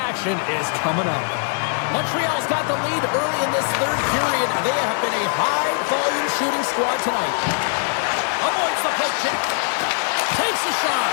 is coming up. Montreal's got the lead early in this third period. They have been a high-volume shooting squad tonight. Avoids the poke check. Takes a shot.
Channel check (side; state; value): right; silent; 55 dB below the other